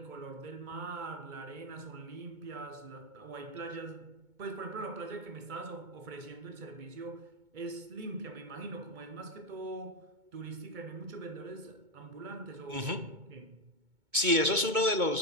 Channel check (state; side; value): late; left; 2.2 ms